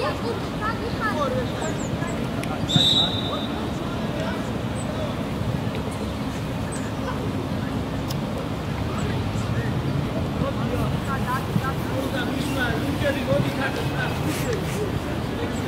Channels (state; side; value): identical; both; correlation 1.00